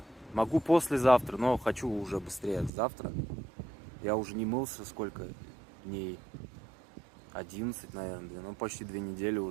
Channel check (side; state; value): left; drops out; at 2.7 s